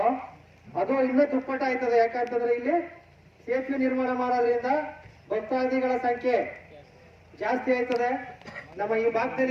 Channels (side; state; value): both; identical; correlation 1.00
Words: ಅದು ಇನ್ನೂ ದುಪ್ಪಟ್ಟ ಆಯ್ತದೆ. ಯಾಕಂತಂದ್ರೆ ಇಲ್ಲಿ ಸೇತುವೆ ನಿರ್ಮಾಣ ಮಾಡೋದ್ರಿಂದ ಭಕ್ತಾದಿಗಳ ಸಂಖ್ಯೆ ಜಾಸ್ತಿ ಆಯ್ತದೆ. ನಮ್ಮ ಈ